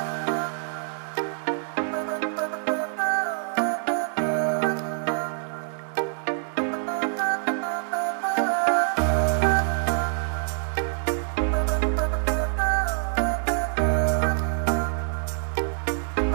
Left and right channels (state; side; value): silent; left; 61 dB below the other